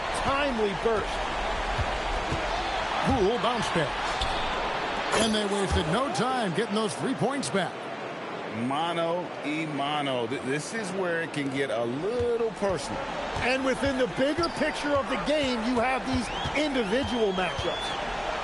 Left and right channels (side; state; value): both; identical; correlation 1.00